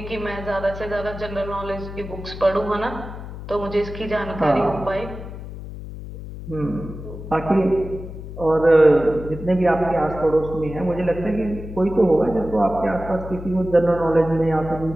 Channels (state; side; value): noise; left; hum, 11 dB below the sound